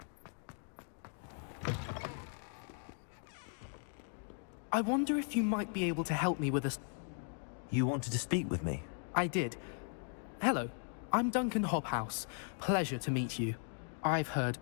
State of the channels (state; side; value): silent; right; 53 dB below the other